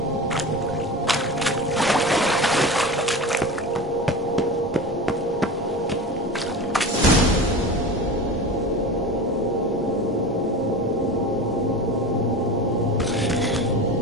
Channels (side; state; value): both; normal; correlation 0.30